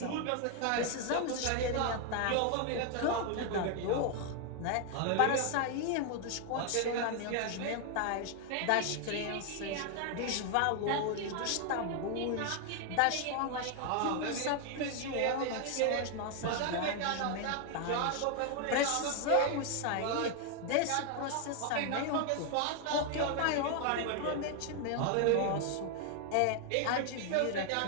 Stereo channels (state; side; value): different; both; correlation 0.00